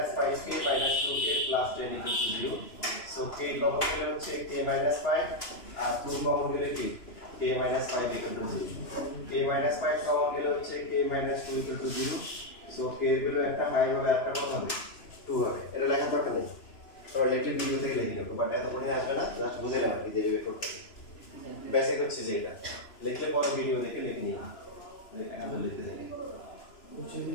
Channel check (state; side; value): late; right; 2.9 ms